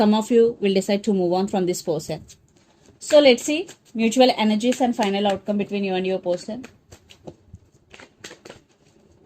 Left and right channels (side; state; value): both; identical; correlation 1.00